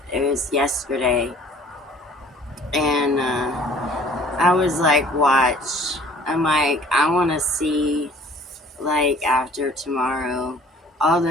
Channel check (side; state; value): both; normal; correlation 0.52